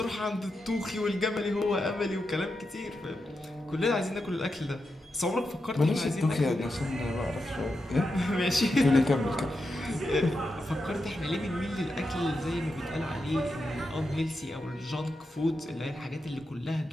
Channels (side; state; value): both; normal; correlation 0.87